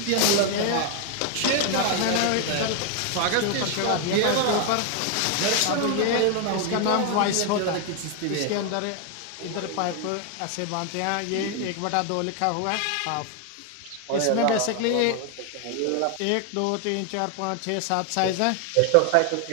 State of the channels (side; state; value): both; different; correlation 0.00